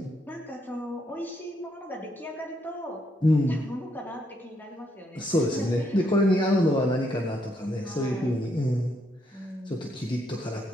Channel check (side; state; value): both; normal; correlation 0.75